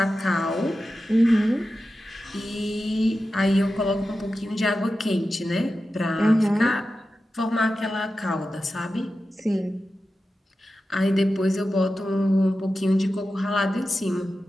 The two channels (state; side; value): normal; both; correlation 0.92